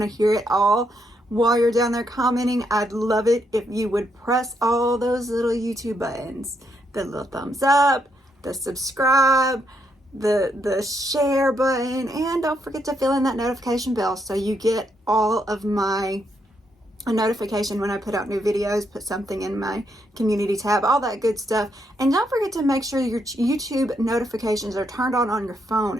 to hear it all. While you're down there commenting, I'd love it if you would press all those little YouTube buttons. The little thumbs up, the subscribe, the share button, and don't forget to fill in that notification bell so you get all of my a notification when I put out new videos, put something in my community tab, all that good stuff. And don't forget to make sure your YouTube notifications are turned on your phone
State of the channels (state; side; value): normal; both; correlation 0.77